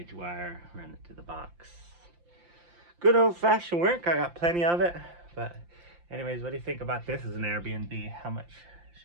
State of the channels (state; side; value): late; left; 5.8 ms